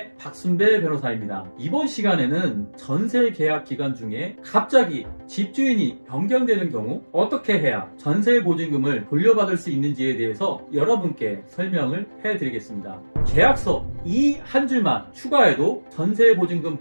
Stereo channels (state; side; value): inverted; both; correlation -1.00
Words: 박순배 변호사입니다. 이번 시간에는 전세 계약 기간 중에 갑자기 집주인이 변경되는 경우 어떻게 해야 전세 보증금을 돌려받을 수 있는지에 대해서 여러분께 설명을 해드리겠습니다. 계약서 이 한 줄만 추가해도 전세 보증금